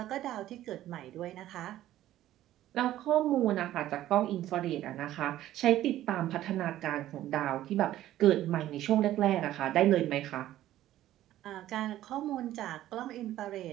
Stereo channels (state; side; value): quieter; left; 13.6 dB